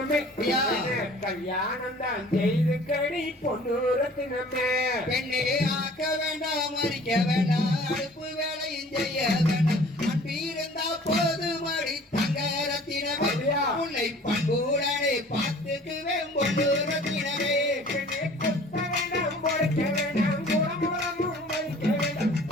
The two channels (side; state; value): both; normal; correlation 0.49